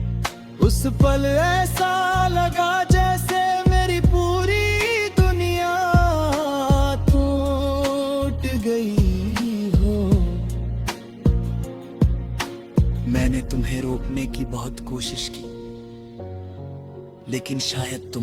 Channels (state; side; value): identical; both; correlation 1.00